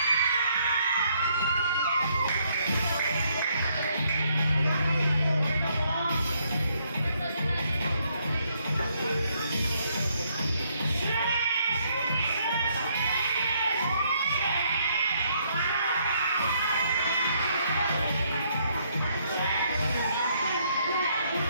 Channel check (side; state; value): both; inverted; correlation -0.71